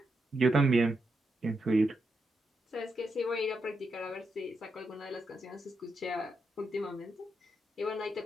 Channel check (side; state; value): both; normal; correlation 0.84